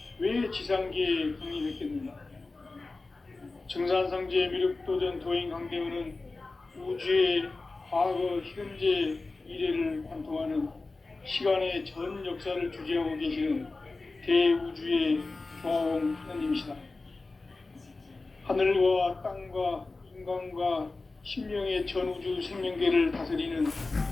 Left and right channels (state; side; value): quieter; right; 3.5 dB